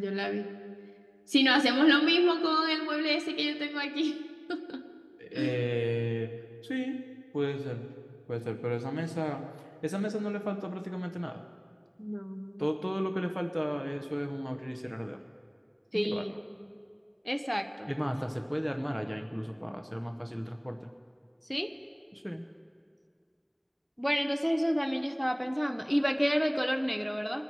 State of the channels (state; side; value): identical; both; correlation 1.00